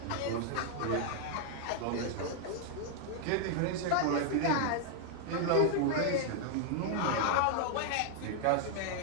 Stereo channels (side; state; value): both; different; correlation 0.00